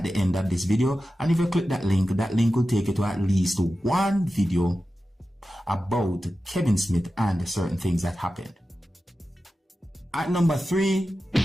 the end of this video. And if you click that link will take you to at least 1 video about Kevin Smith and certain things that happened. At number 3,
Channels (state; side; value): normal; both; correlation 0.93